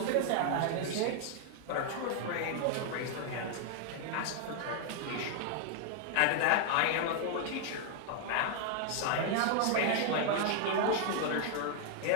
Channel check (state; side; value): different; both; correlation 0.00